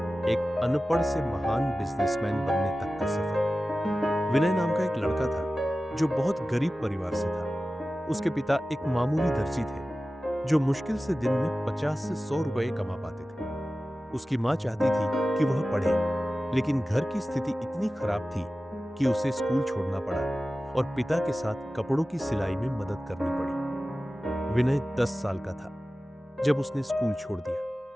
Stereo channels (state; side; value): normal; both; correlation 0.95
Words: एक अनपढ़ से महान बिजनेसमैन बनने तक का सफर। विनय नाम का एक लड़का था जो बहुत गरीब परिवार से था। उसके पिता एक मामूली दर्जी थे जो मुश्किल से दिन में 50 से 100 रुपए कमा पाते थे। उसकी मां चाहती थी कि वह पढ़े, लेकिन घर की स्थिति इतनी खराब थी कि उसे स्कूल छोड़ना पड़ा और पिता के साथ कपड़ों की सिलाई में मदद करनी पड़ी। विनय 10 साल का था जब उसने स्कूल छोड़